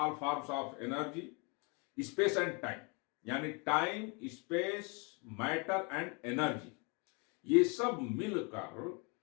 forms of energy, space and time यानी time, space, matter and energy, ये सब मिलकर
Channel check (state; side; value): quieter; right; 32.3 dB